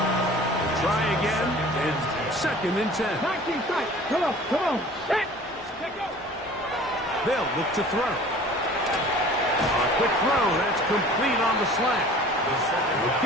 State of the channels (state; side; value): normal; both; correlation 0.46